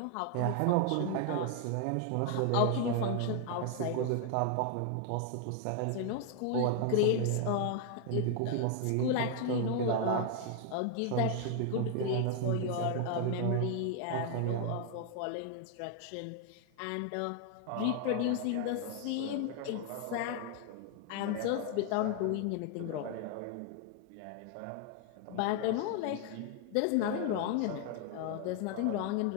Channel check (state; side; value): different; both; correlation 0.00